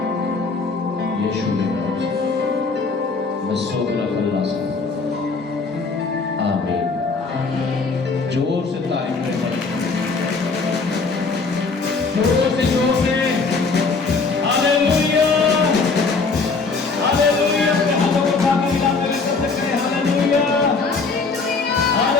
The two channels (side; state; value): right; quieter; 4.3 dB